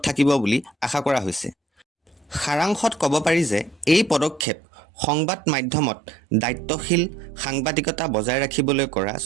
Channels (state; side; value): drops out; left; at 4.5 s